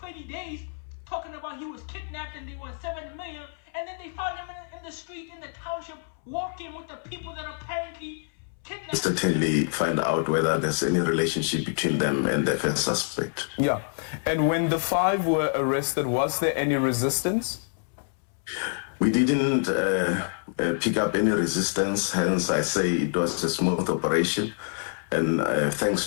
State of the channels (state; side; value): silent; right; 60 dB below the other